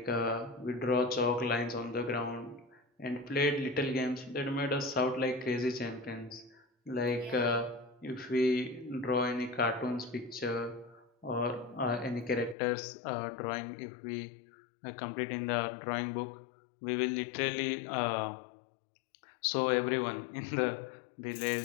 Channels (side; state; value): right; drops out; at 12.6 s